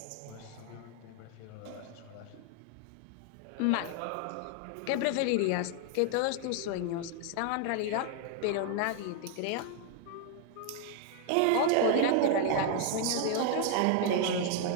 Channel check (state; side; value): different; both; correlation 0.00